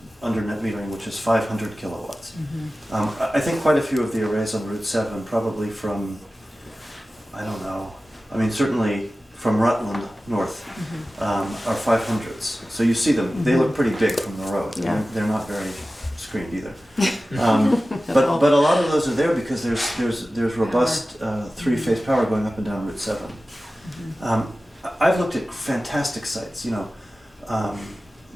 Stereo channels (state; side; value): normal; both; correlation 0.95